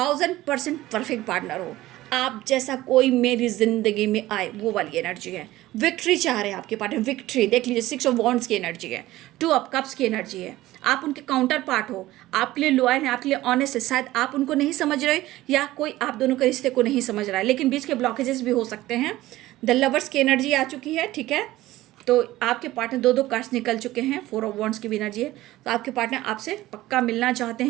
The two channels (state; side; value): quieter; left; 16.5 dB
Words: परफेक्ट पार्टनर हो। आप जैसा कोई मेरी ज़िंदगी में आए, वो वाली एनर्जी है। विक्ट्री चाह रहे हैं आपके पार्टनर, विक्ट्री। देख लीजिए 6 ऑफ वॉन्ड्स की एनर्जी है, 2 ऑफ कप्स की एनर्जी है। आप उनके काउंटर पार्ट हो, आपके लिए लॉयल है, आपके लिए ऑनेस्ट है। शायद आप उनको नहीं समझ रहे, या कोई आप दोनों के रिश्ते को नहीं समझ रहा है, लेकिन बीच के ब्लॉकेजेस भी हो सकते हैं। द लवर्स की एनर्जी आ चुकी है। ठीक है, तो आपके पार्टनर 2 कार्ड्स निकल चुके हैं, 4 ऑफ वॉन्ड्स की भी एनर्जी है। तो आपके पार्टनर आपसे पक्का मिलना चाहते